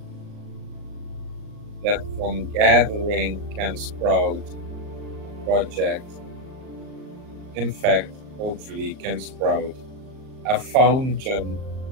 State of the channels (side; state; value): left; late; 38 ms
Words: that from gathering can sprout a project. In fact, hopefully can sprout a fountain